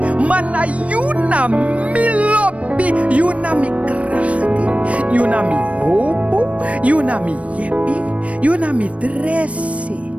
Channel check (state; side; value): late; left; 0.064 ms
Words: Mana you na me lobby, you na me krachti, you na me hope. You na mi yepi, you na mi dresi,